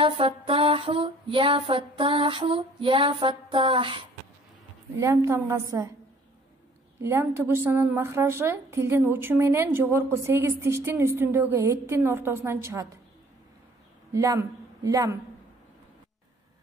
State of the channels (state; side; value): normal; both; correlation 0.55